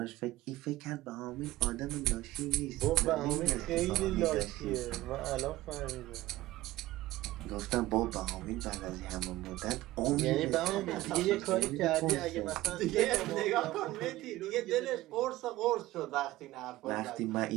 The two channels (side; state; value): left; quieter; 16.7 dB